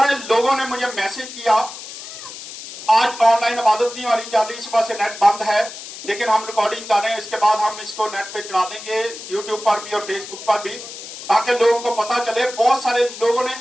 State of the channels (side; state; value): left; noise; hiss, 12 dB below the sound